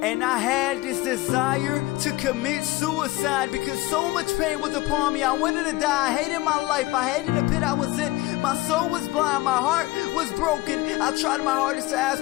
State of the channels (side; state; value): right; quieter; 19.5 dB